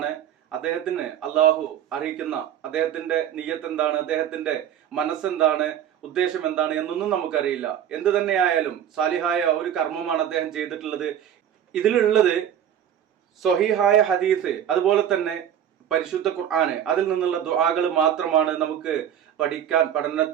അദ്ദേഹത്തിന് അള്ളാഹു അറിയിക്കുന്ന അദ്ദേഹത്തിന്റെ നിയ്യത്ത് എന്താണ്, അദ്ദേഹത്തിന്റെ മനസ്സെന്താണ്, ഉദ്ദേശം എന്താണ് എന്നൊന്നും നമുക്കറിയില്ല. എന്ത് തന്നെയായാലും സാലിഹായ ഒരു കർമ്മമാണ് അദ്ദേഹം ചെയ്തിട്ടുള്ളത്. ഇതിലുള്ളത് സ്വഹീഹായ ഹദീസ്, അതുപോലെ തന്നെ പരിശുദ്ധ ഖുർആന്, അതിൽ നിന്നുള്ള ദുആകൾ മാത്രമാണ്. നമുക്ക്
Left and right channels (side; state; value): left; quieter; 9.7 dB